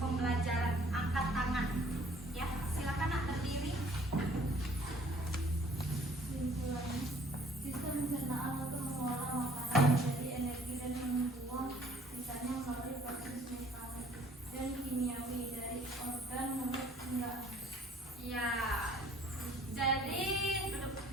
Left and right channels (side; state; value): both; normal; correlation 0.57